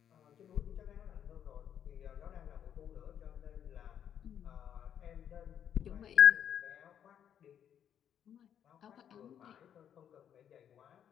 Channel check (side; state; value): right; quieter; 9.2 dB